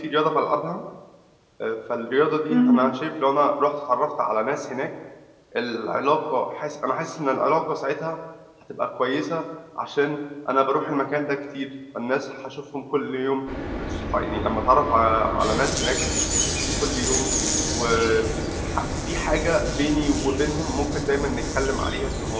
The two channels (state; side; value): identical; both; correlation 1.00